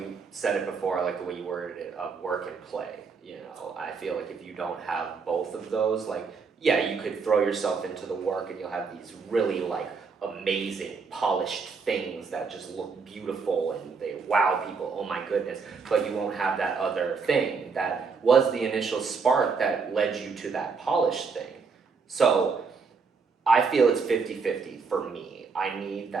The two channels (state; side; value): quieter; left; 5.1 dB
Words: said it before, I like the way you worded it, of work and play. I feel like if you don't have both of those, like, yeah, you could throw yourself into the work and you'll have these really like amazing polished things that just look beautiful and they wow people, oh my goodness, but you won't have that other thing that was the initial spark that led you to that polished thing. So I feel it's 50-50 for me. I need